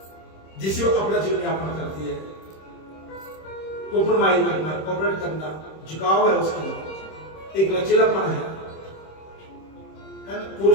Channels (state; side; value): late; right; 26 ms